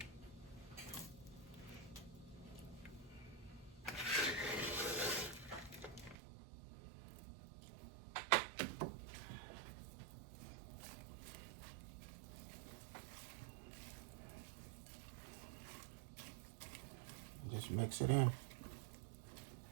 Just mix it in.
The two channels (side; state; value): left; drops out; at 6.2 s